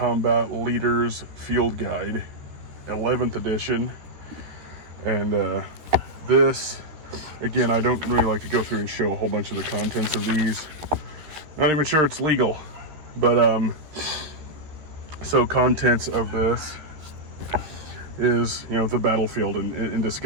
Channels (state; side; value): late; left; 13 ms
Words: Leaders Field Guide, 11th edition. And this, again, I don't really like to go through and show a whole bunch of the contents of these. Not even sure it's legal, but so contents of this is, you know, the battlefield and